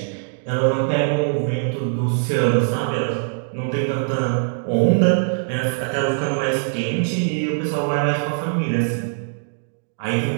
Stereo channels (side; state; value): left; silent; digital silence